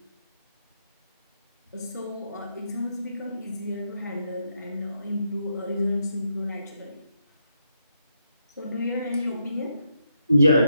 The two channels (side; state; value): both; inverted; correlation -0.80